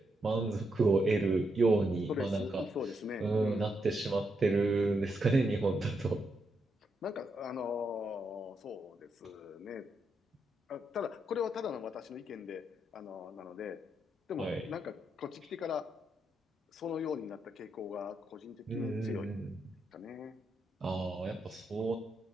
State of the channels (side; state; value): both; normal; correlation 0.81